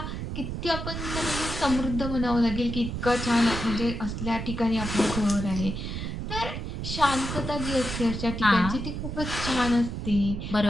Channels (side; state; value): right; noise; rumble, 5 dB below the sound